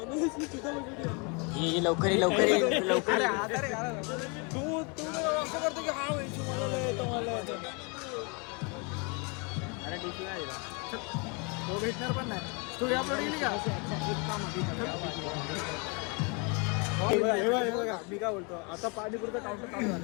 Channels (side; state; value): right; quieter; 32.7 dB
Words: ये लवकर अरे टीसी नाही दिला. तो भेटणार पण नाही. स्टोरी अपलोड केली का? मी काय बोलतो, आता पाणीपुरचा काउंटर चालू